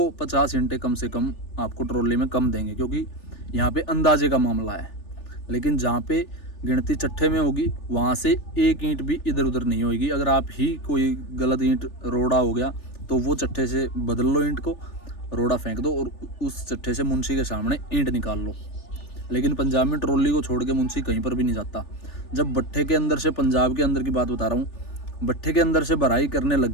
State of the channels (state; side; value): late; right; 3.4 ms